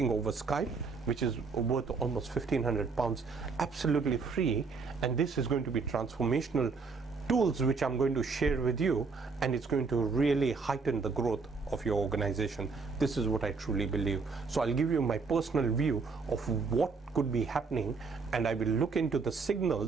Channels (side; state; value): left; quieter; 4.6 dB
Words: over Skype, which is worth almost £1,500, absolutely free, and this is going to be transformational tools which I'm going to share with you, and it's going to really heighten the growth of your organization. This is what I truly believe. So I'll give you my personal view of what could be happening, and I will look into the